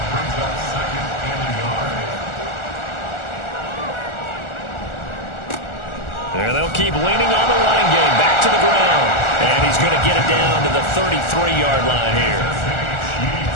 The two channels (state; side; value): late; right; 1.4 ms